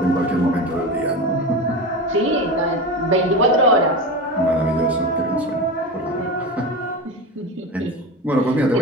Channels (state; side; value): normal; both; correlation 0.24